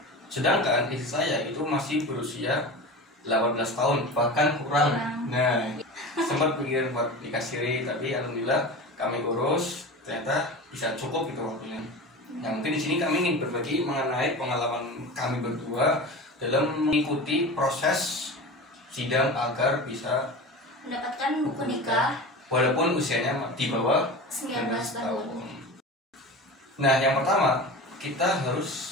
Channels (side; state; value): both; normal; correlation 0.30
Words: sedangkan istri saya itu masih berusia 18 tahun, bahkan kurang. Nah, sempat pikir buat nikah siri, tapi alhamdulillah kami urus, ternyata bisa cukup gitu waktunya. Nah, mungkin di sini kami ingin berbagi mengenai pengalaman kami berdua dalam mengikuti proses sidang agar bisa mendapatkan buku nikah walaupun usianya di bawah 19 tahun. Nah, yang pertama kita